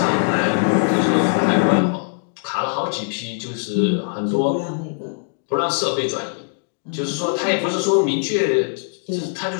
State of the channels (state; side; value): silent; right; 62 dB below the other